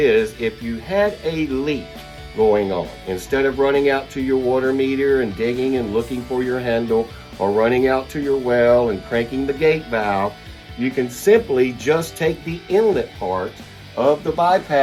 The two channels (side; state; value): both; identical; correlation 1.00